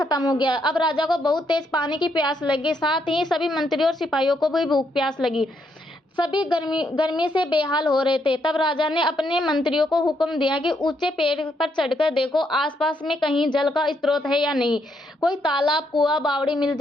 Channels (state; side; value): normal; both; correlation 0.76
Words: हो गया। अब राजा को बहुत तेज पानी की प्यास लगी, साथ ही सभी मंत्रियों और सिपाहियों को भी भूख प्यास लगी। सभी गर्मी से बेहाल हो रहे थे। तब राजा ने अपने मंत्रियों को हुक्म दिया कि ऊंचे पेड़ पर चढ़कर देखो आसपास में कहीं जल का स्रोत है या नहीं। कोई तालाब, कुआं, बावड़ी मिल